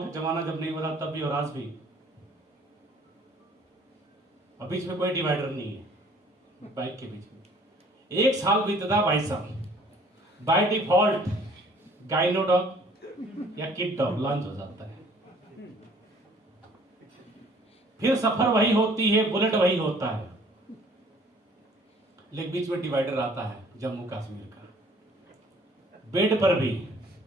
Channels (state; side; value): normal; both; correlation 0.56